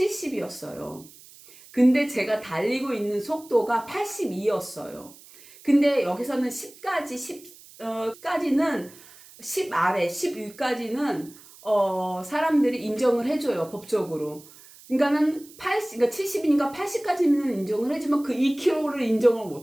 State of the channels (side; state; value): right; noise; hiss, 22 dB below the sound